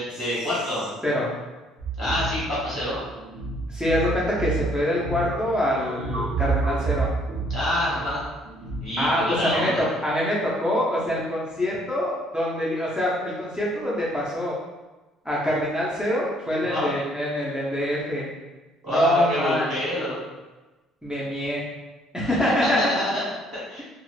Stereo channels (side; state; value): both; normal; correlation 0.65